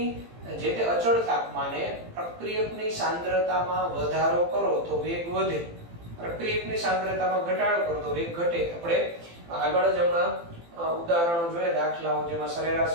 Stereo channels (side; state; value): left; late; 18 ms